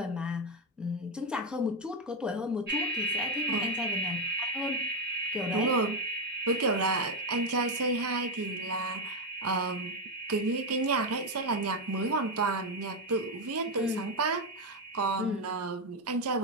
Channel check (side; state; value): both; normal; correlation 0.06